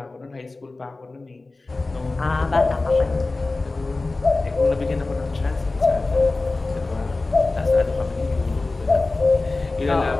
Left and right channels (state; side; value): quieter; right; 3.3 dB